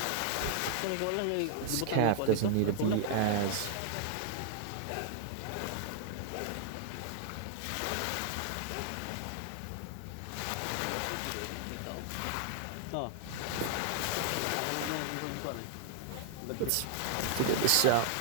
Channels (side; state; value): both; different; correlation 0.00